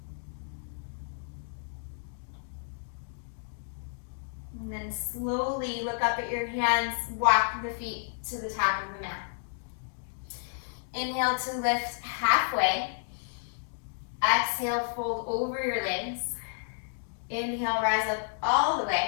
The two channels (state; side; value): silent; right; digital silence